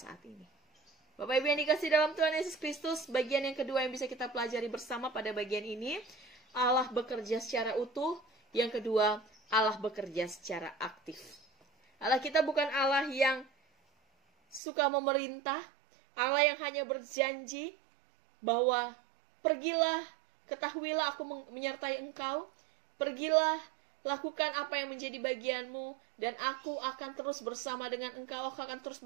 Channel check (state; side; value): drops out; left; at 14.6 s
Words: ini. Bapak Ibu yang dikasih dalam Tuhan Yesus Kristus, bagian yang kedua yang bisa kita pelajari bersama pada bagian ini, Allah bekerja secara utuh. Yang kedua, Allah bekerja secara aktif. Allah kita bukan Allah yang suka memerintah, Allah yang hanya berjanji bahwa pergilah, ketahuilah aku menyertai engkau, pergilah, lakukan apa yang menjadi bagianmu, dan aku akan terus bersama dengan engkau, aku akan terus